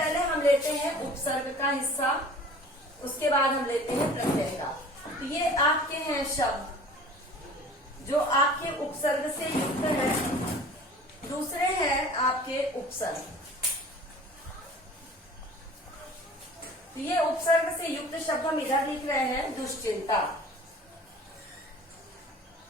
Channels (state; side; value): normal; both; correlation 0.45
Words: हम लेते हैं उपसर्ग का हिस्सा, उसके बाद हम लेते हैं प्रत्यय का। तो ये आपके हैं शब्द जो आपके उपसर्ग से युक्त है, दूसरे हैं आपके उपसर्ग। तो ये उपसर्ग से युक्त शब्द हम इधर लिख रहे हैं, दुश्चिंता।